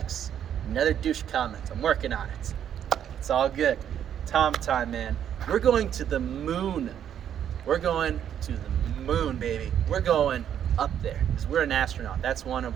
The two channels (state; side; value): quieter; left; 9.6 dB